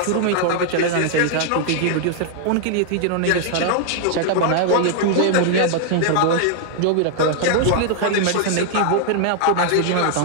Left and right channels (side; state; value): both; different; correlation 0.00